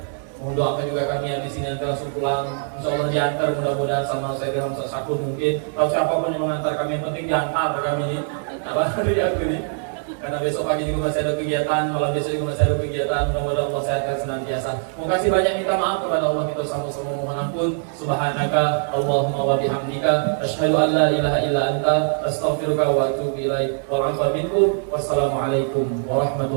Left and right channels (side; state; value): left; silent; 62 dB below the other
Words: Mohon doakan juga kami yang di sini nanti langsung pulang. Insyaallah diantar mudah-mudahan sama saya dengan Ustaz Syakur mungkin. Atau siapapun yang mengantar kami yang penting diantar kami ini. Apa dari aku ini? Karena besok pagi juga masih ada kegiatan, malam besok juga masih ada kegiatan. Mudah-mudahan Allah sehatkan senantiasa. Terima kasih banyak minta maaf kepada Allah kita sama-sama mohon ampun. Subhanaka Allahumma wa bihamdika asyhadu an la ilaha illa anta astaghfiruka wa atubu ilaik. Wal 'afwa minkum. Wassalamualaikum